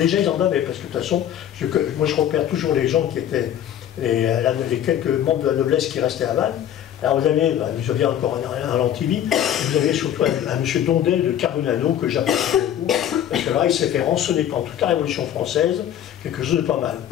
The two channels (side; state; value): right; quieter; 10.5 dB